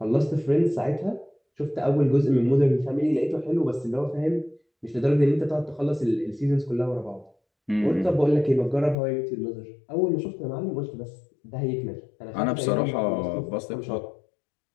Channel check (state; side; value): drops out; right; at 9.0 s